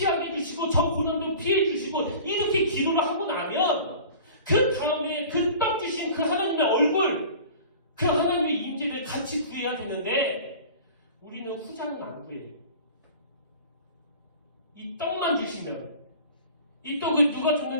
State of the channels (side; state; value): both; inverted; correlation -0.41